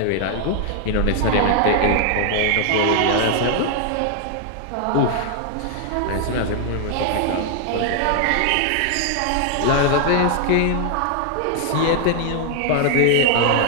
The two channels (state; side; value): different; both; correlation 0.00